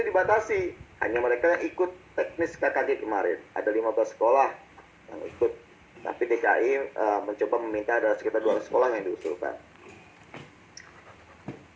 dibatasi, hanya mereka yang ikut teknis KKG kemarin. Ada 15 sekolah yang ikut. Tapi DKI mencoba meminta ada sekitar 200 sekolah yang diusulkan.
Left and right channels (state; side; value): identical; both; correlation 1.00